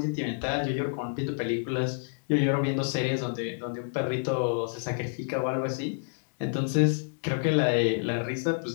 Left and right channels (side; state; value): right; silent; digital silence